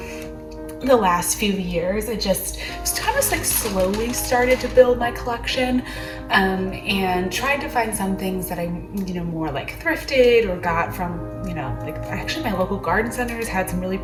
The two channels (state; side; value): identical; both; correlation 1.00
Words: the last few years. It just kind of like slowly started to build my collection, and tried to find some things that I more like thrifted or got from like actually my local garden centers had some really